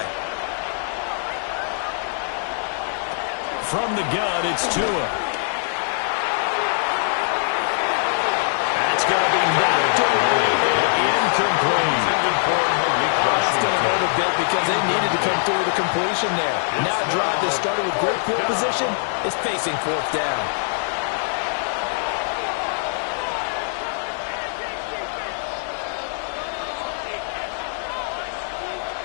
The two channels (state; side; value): silent; right; digital silence